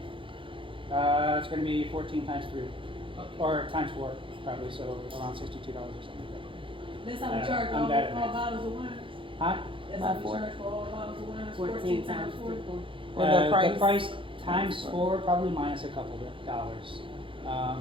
It's going to be 14 times 3, or times 4, probably, so around $62 or something like That's how we charge I'm all bad at math. bottles of wine. that. Huh? That's how we charge for all bottles of wine. 14 times 4. With the price? times 4, probably minus a couple of dollars.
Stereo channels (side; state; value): left; late; 0.25 ms